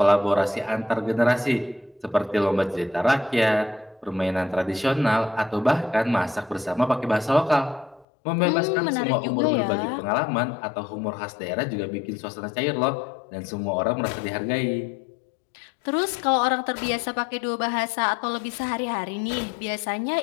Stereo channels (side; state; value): right; drops out; at 8.1 s